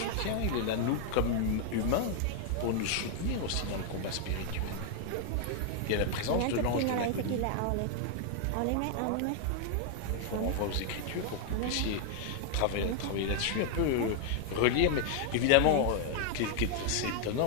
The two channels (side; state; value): both; different; correlation 0.00